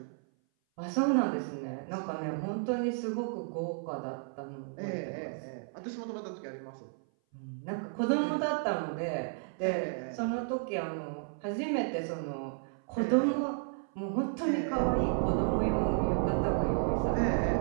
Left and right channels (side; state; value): left; silent; 56 dB below the other